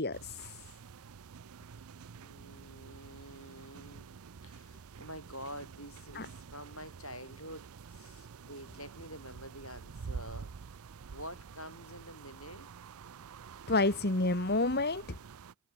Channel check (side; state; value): both; normal; correlation 0.05